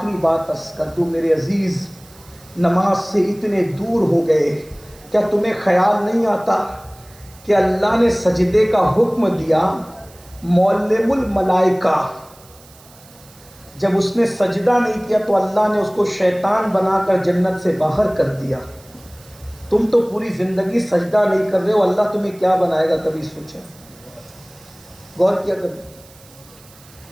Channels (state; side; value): noise; right; hiss, 25 dB below the sound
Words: بات عرض کر دوں میرے عزیز، نماز سے اتنے دور ہو گئے، کیا تمہیں خیال نہیں آتا کہ اللہ نے سجدے کا حکم دیا؟ معلم الملائکہ جب اس نے سجدہ نہیں کیا تو اللہ نے اس کو شیطان بنا کر جنت سے باہر کر دیا. تم تو پوری زندگی سجدہ نہیں کر رہے ہو، اللہ تمہیں کیا بنائے گا؟ کبھی سوچا؟ غور کیا کبھی؟